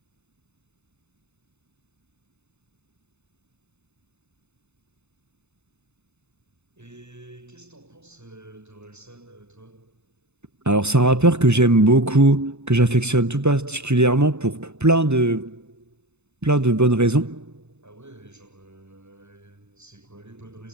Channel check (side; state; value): left; late; 0.82 ms